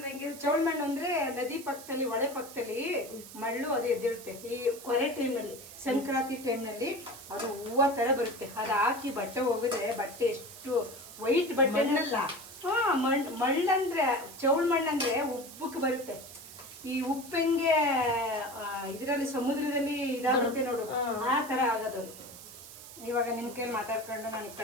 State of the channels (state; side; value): noise; right; hiss, 15 dB below the sound